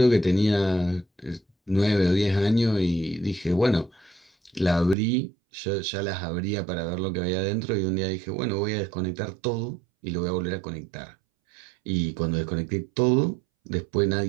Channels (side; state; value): left; drops out; at 5.0 s